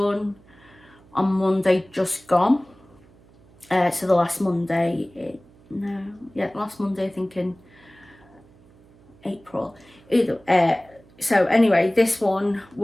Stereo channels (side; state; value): right; noise; hum, 27 dB below the sound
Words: on Monday just gone. So the last Monday, last Monday, I think in April. So anyway, this one